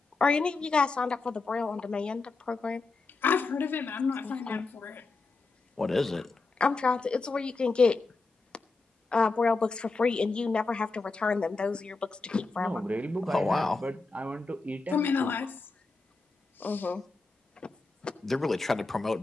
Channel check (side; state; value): right; quieter; 3.8 dB